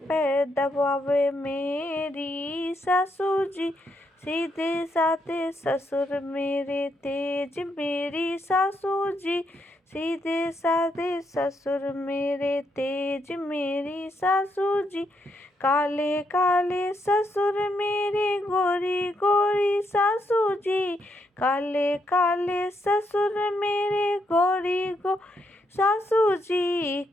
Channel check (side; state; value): both; normal; correlation 0.78